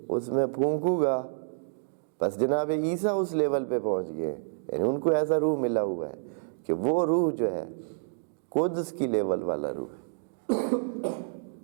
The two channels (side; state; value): left; silent; digital silence